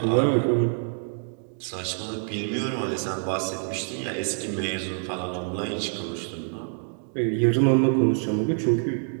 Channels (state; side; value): silent; left; 61 dB below the other